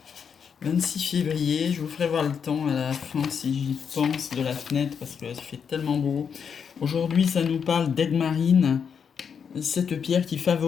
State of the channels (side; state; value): right; quieter; 6.9 dB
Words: 26 février? Je vous ferai voir le temps à la fin si j'y pense de la fenêtre parce que ça fait tellement beau. Aujourd'hui, ça nous parle d'aigue marine. Cette pierre qui